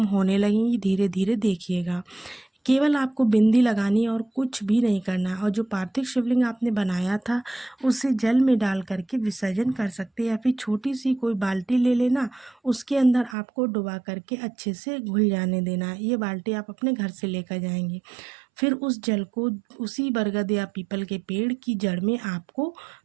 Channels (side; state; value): left; drops out; at 13.4 s